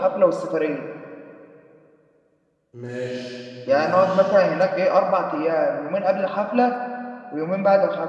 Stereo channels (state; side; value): identical; both; correlation 1.00